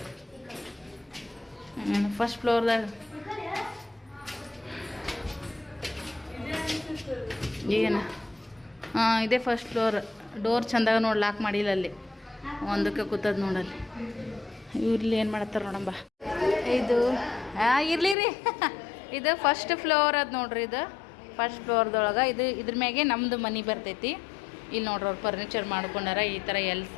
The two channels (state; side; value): drops out; right; at 18.2 s